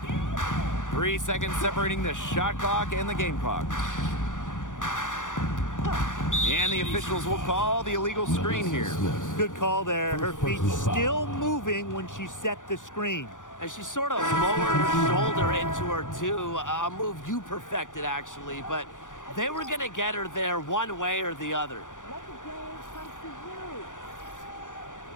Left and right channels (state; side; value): late; right; 0.87 ms